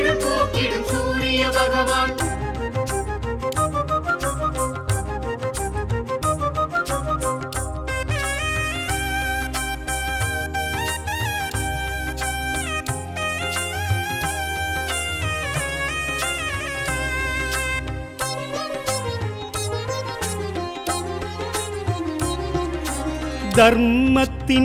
போக்கிடும் சூரிய பகவான்.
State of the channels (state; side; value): identical; both; correlation 1.00